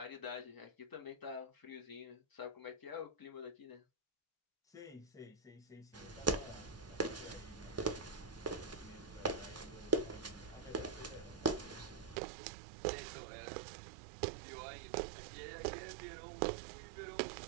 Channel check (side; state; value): left; drops out; at 12.2 s